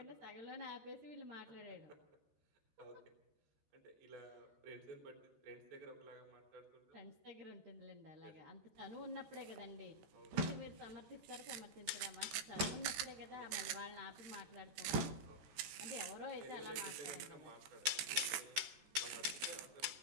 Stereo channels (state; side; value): late; left; 13 ms